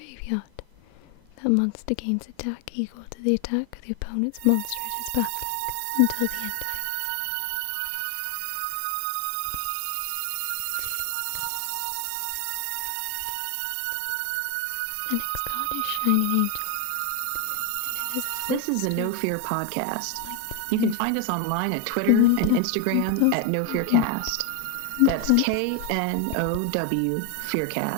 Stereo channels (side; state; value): both; different; correlation 0.01